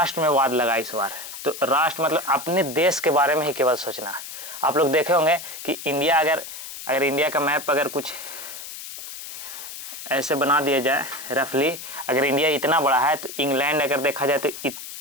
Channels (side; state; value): left; noise; hiss, 11 dB below the sound